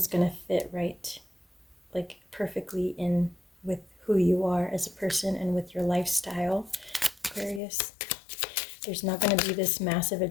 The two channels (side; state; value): right; drops out; at 7.6 s